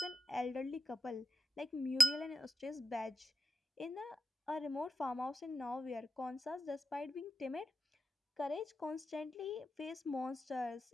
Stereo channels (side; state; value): both; normal; correlation 0.91